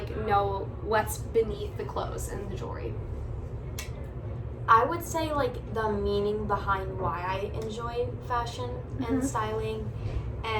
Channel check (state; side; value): identical; both; correlation 1.00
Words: know what's beneath the clothes and the jewelry? I would say like the meaning behind why I enjoy fashion and styling